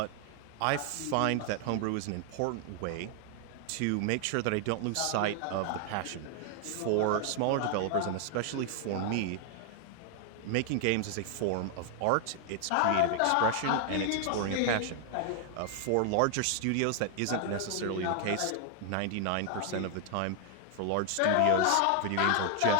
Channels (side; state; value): both; different; correlation 0.00